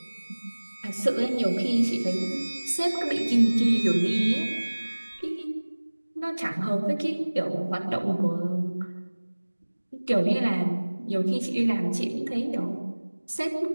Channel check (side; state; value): both; inverted; correlation -1.00